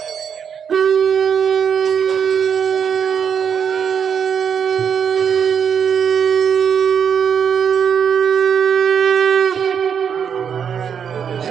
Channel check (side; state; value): left; quieter; 7.5 dB